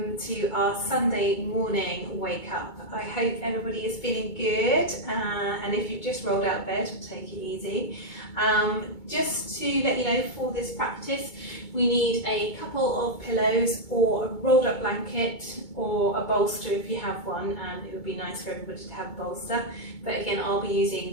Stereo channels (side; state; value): right; late; 2.2 ms